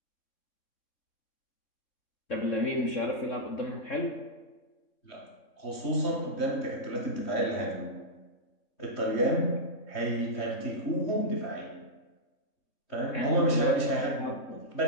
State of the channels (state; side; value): late; right; 3.2 ms